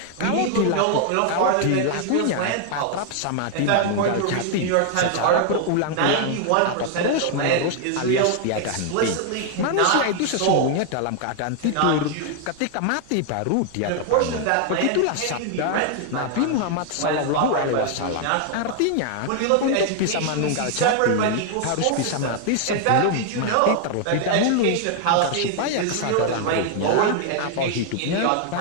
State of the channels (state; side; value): different; both; correlation 0.00